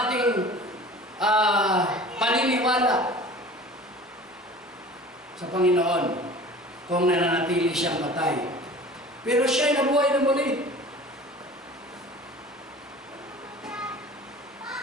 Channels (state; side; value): normal; both; correlation 0.42